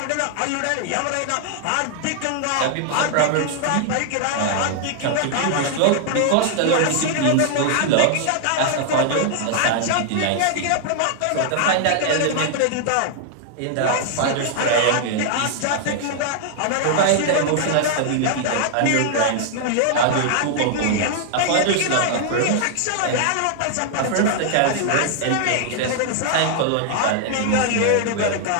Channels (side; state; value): both; different; correlation 0.00